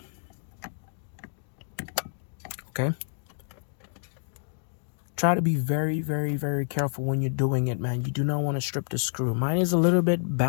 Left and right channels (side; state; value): right; silent; digital silence